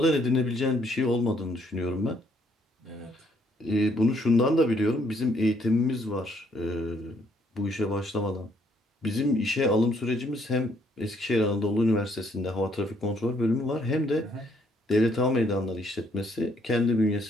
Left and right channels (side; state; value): both; normal; correlation 0.68